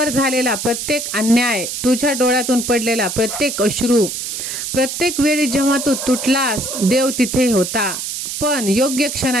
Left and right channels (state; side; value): noise; right; hiss, 5 dB below the sound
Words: झालेला प्रत्येक अन्याय, तुझ्या डोळ्यातून पडलेला प्रत्येक अश्रू, प्रत्येक वेळी जेव्हा तू तुटलास देव तिथे होता. पण योग्य